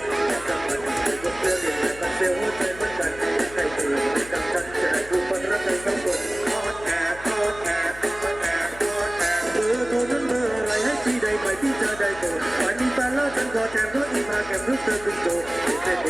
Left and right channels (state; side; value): noise; left; hum, 17 dB below the sound